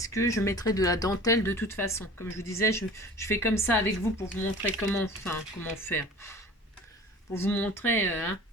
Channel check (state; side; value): normal; both; correlation 0.42